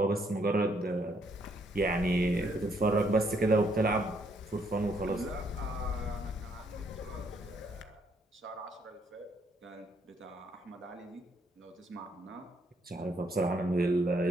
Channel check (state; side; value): normal; both; correlation 0.70